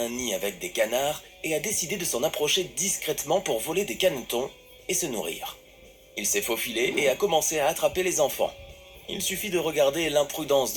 nid avec des canards et a décidé de s'en approcher discrètement pour voler des canetons et se nourrir. Il s'est faufilé et a commencé à attraper les enfants. Il suffit de regarder l'imprudence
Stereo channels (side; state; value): both; identical; correlation 1.00